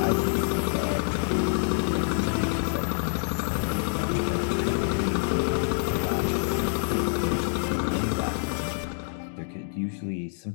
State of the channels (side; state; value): right; silent; digital silence